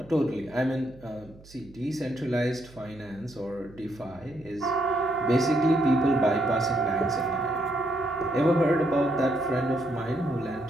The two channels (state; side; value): noise; right; hum, 23 dB below the sound